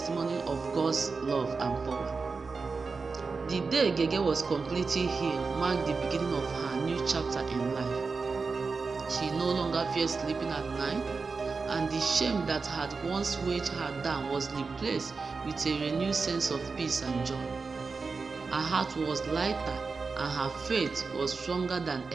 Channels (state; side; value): quieter; left; 4.5 dB